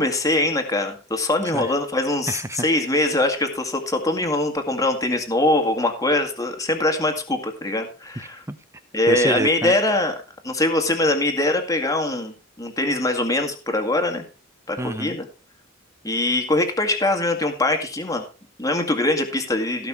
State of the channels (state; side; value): normal; both; correlation 0.32